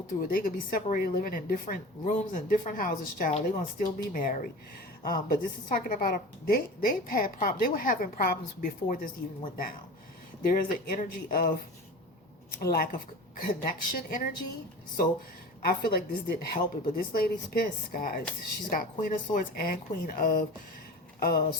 through it. They could be separated, living in different rooms and different houses, child. They're going to still be married. But this is talking about, they've had problems. They were having problems before this even went down. There is an energy of lack of connection energy. So I feel like this didn't help it, but this lady's pissed, guys. She's got Queen of Swords and Queen of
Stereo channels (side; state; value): both; normal; correlation 0.34